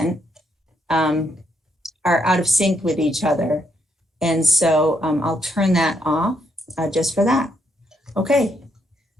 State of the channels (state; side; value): normal; both; correlation 0.76